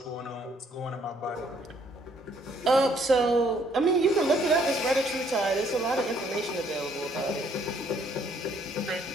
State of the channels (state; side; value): normal; both; correlation 0.65